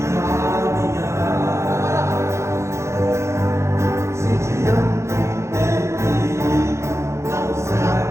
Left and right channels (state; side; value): late; left; 0.14 ms